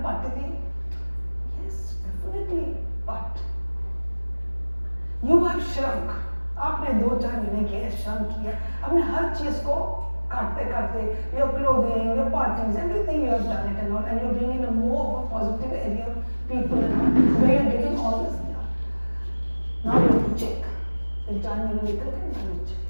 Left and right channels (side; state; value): both; inverted; correlation -1.00